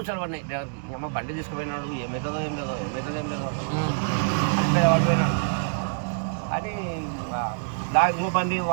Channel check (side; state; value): left; silent; digital silence